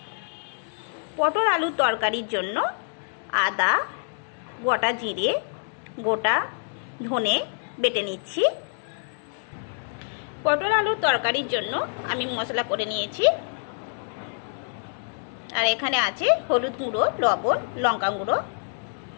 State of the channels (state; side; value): silent; right; digital silence